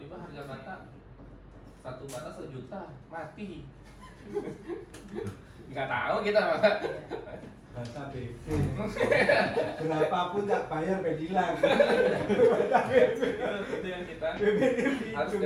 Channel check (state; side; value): identical; both; correlation 1.00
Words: harga bata 1 bata 1 juta mati. Nggak tahu kita masa. Bata BP. Berapapun tak bayar bedilang. Itu yang kita harus